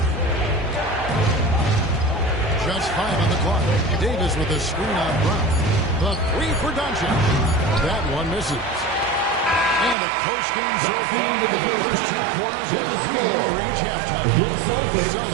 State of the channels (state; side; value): drops out; left; at 10.0 s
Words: Just 5 on the clock. Davis with a screen on Brown. The 3 for Doncic. That one misses. And a close game so far to the first 2 quarters as we reach halftime.